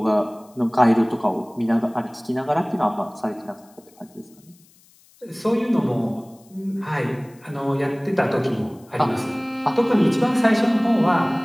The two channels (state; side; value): noise; left; hiss, 29 dB below the sound